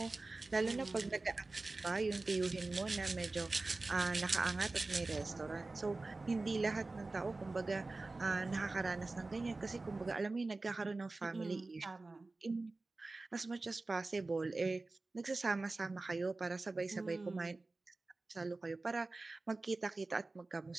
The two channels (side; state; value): left; quieter; 3.3 dB